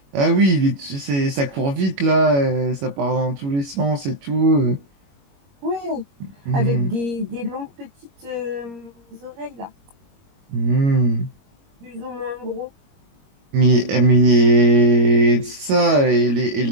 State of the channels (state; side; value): late; left; 21 ms